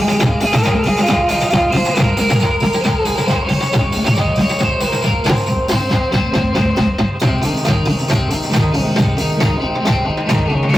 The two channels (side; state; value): both; normal; correlation 0.93